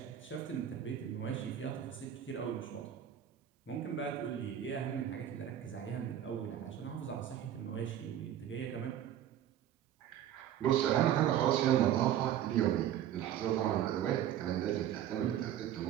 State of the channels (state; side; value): quieter; left; 10.8 dB